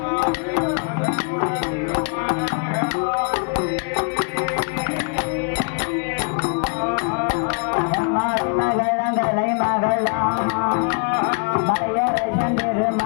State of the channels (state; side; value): quieter; right; 38.1 dB